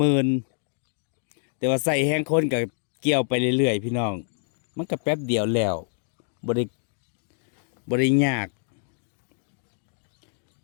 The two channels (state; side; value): silent; right; digital silence